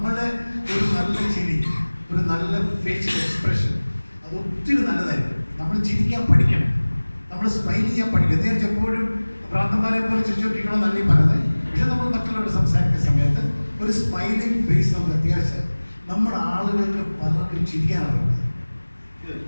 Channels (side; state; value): both; inverted; correlation -1.00